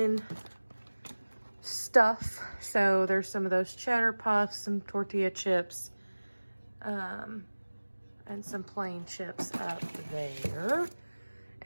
stuff. So there's some of those cheddar puffs, some tortilla chips, and some plain chips up there.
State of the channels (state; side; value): inverted; both; correlation -1.00